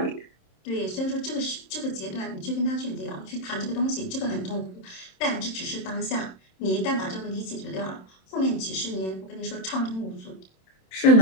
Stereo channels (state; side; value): late; right; 27 ms